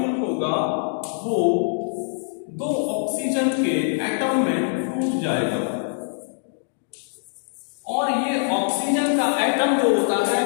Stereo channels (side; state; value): right; silent; digital silence